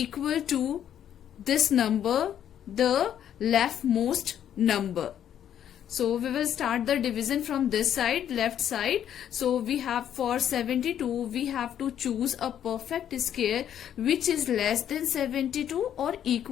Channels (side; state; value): right; quieter; 10.0 dB